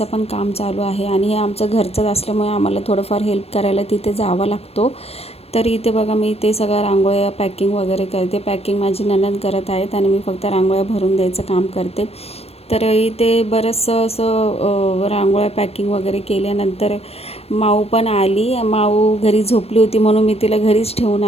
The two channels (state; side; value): late; right; 0.29 ms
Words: पण काम चालू आहे आणि हे आमचं घरचंच असल्यामुळे आम्हाला थोडंफार हेल्प करायला तिथे जावं लागतो. तर इथे बघा मी ते सगळ्या रांगोळ्या पॅकिंग वगैरे करते. पॅकिंग माझी नणंद करत आहेत आणि मी फक्त रांगोळ्या भरून द्यायचं काम करते. तर इथे बरंचसं असं रांगोळ्या पॅकिंग वगैरे केल्यानंतर माऊ पण आली. माऊ घरी झोपली होती म्हणून मी तिला घरीच ठेवून